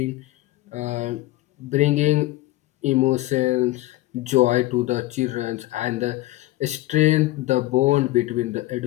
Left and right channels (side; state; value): right; quieter; 17.9 dB